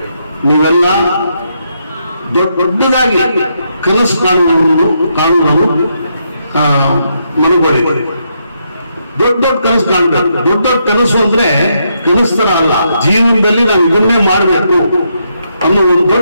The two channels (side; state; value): both; inverted; correlation -0.79